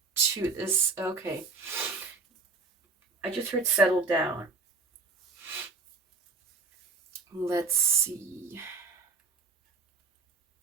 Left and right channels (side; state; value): left; quieter; 4.3 dB